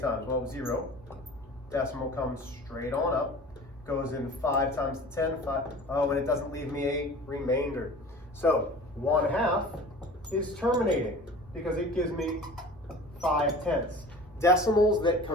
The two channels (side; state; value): both; normal; correlation 0.41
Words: Well, 0. Decimal comes straight on up. Goes in 5 times 10. 5. Oh, and it doesn't leave me a remainder. So 1/2 is terminating because it gives me 5/10. Decimals that